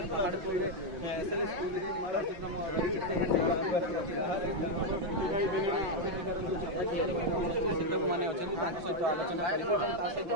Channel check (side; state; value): left; late; 5.8 ms